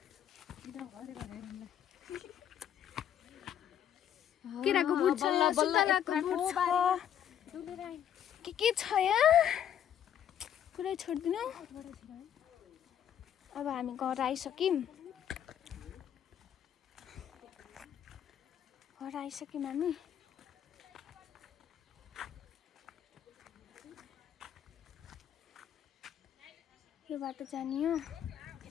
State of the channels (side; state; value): right; quieter; 9.9 dB